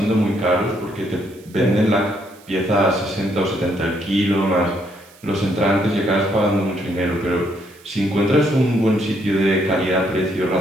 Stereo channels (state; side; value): noise; right; hiss, 26 dB below the sound